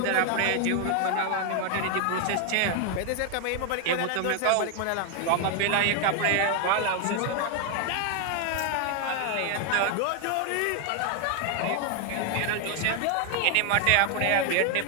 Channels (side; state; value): both; different; correlation 0.00